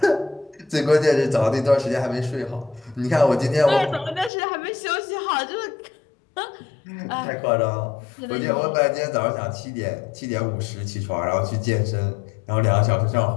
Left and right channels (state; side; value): drops out; right; at 4.3 s